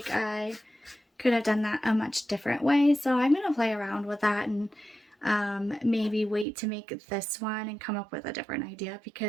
I could have done that a much different way, so I'm going to play around with that and maybe wait to make this one and come up with a different idea,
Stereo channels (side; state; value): left; drops out; at 6.5 s